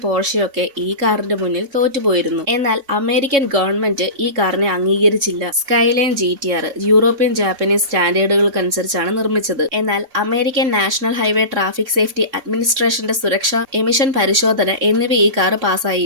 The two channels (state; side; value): late; left; 3.6 ms